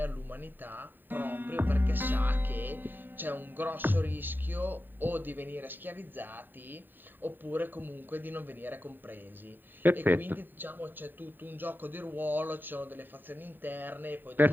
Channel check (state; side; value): late; left; 0.092 ms